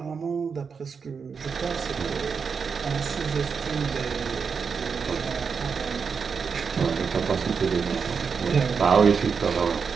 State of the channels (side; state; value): left; quieter; 5.8 dB